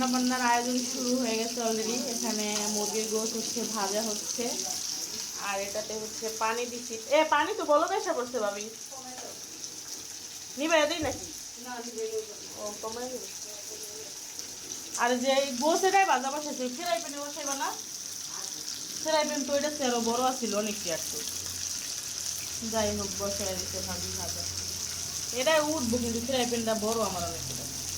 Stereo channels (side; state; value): both; identical; correlation 1.00